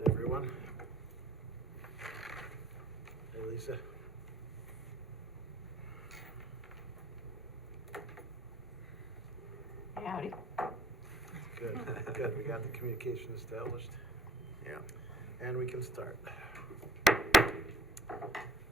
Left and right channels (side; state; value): both; normal; correlation 0.56